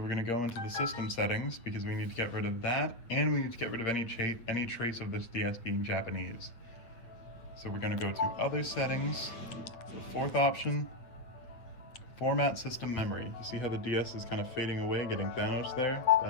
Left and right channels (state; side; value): late; right; 8.4 ms